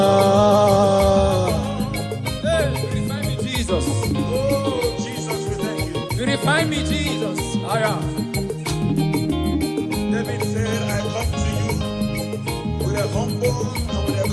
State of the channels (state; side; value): identical; both; correlation 1.00